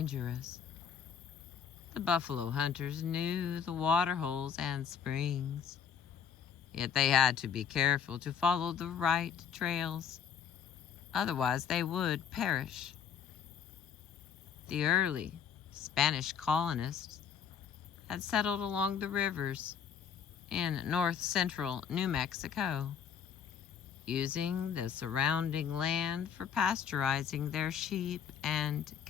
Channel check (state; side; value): quieter; right; 7.6 dB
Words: The buffalo hunters knew the water holes and springs, yet they had to be careful to follow the right trails, otherwise they would perish. The early Spanish colonists had settled along the rivers in north-central New Mexico, using the surrounding land for pasteurizing their sheep and